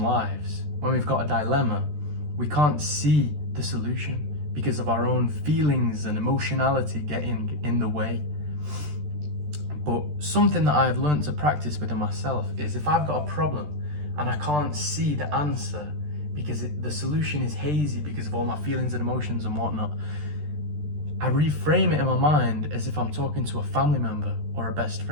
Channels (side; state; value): left; late; 13 ms